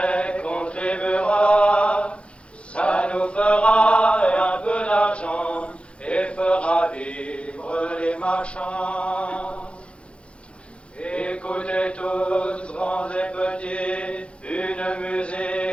contribuera. Ça nous fera un peu d'argent et fera vivre les marchands. Écoutez tous, grands et petits, une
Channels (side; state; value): right; late; 0.059 ms